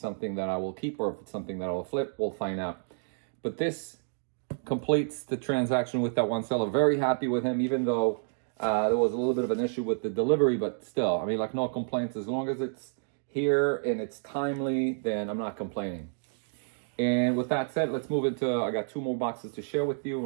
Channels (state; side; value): silent; left; digital silence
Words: that I will keep or if it's something that I will flip. We'll find out. But this completes the transaction with that one seller. Very happy with him, even though there was a little bit of an issue with the delivery, but still, I mean, like, no complaints. As long as it's here and it's timely, then I'm not complaining. And with that said, let's move into, I got 2 more boxes to share with you,